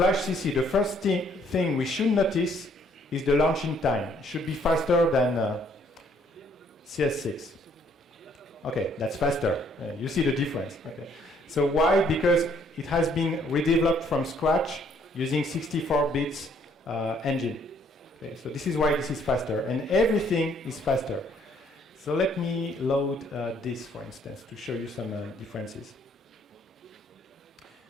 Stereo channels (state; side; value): normal; both; correlation 0.65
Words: CC, the first thing we should notice is the launching time. It should be faster than CS6. Okay, that's faster. You see the difference. Okay. So why? Because it has been redeveloped from scratch using 64 bits engine. Okay, so this is why this is faster, and everything is faster. So let me load this, for instance, to show you some differences.